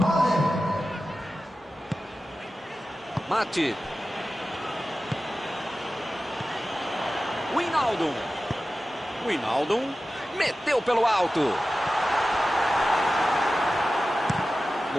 Mate. Wijnaldum. Wijnaldum meteu pelo alto.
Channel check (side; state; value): both; normal; correlation 0.94